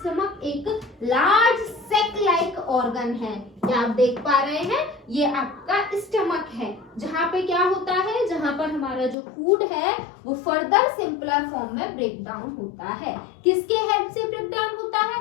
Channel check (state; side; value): drops out; right; at 9.2 s